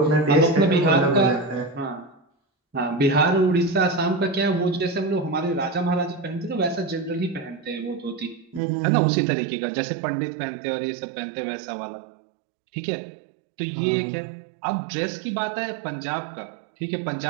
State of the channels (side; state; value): left; drops out; at 8.6 s